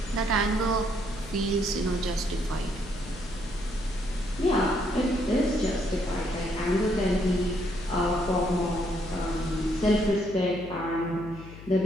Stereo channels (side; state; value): left; noise; hum, 15 dB below the sound